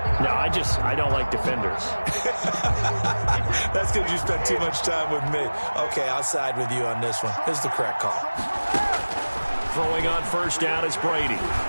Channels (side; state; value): both; inverted; correlation -1.00